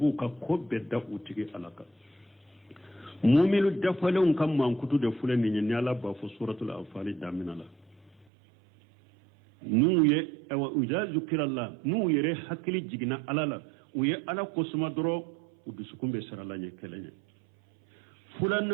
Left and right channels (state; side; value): drops out; left; at 8.2 s